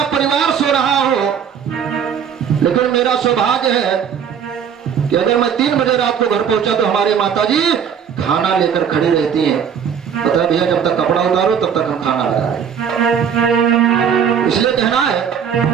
परिवार सो रहा हो, लेकिन मेरा सौभाग्य है कि अगर मैं 3 बजे रात को घर पहुंचा तो हमारी माताजी खाना लेकर खड़ी रहती हैं। पता है भैया, जब तक कपड़ा उतारो तब तक हम खाना लगाए, इसलिए कहना है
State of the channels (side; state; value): left; quieter; 7.7 dB